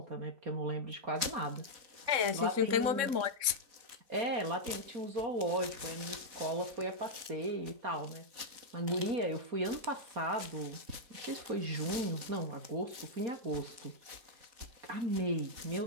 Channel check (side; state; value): left; late; 4.1 ms